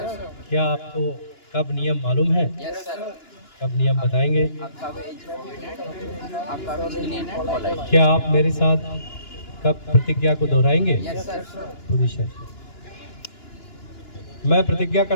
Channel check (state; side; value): late; right; 2.9 ms